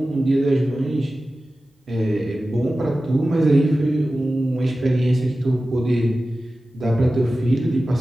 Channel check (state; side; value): normal; both; correlation 0.95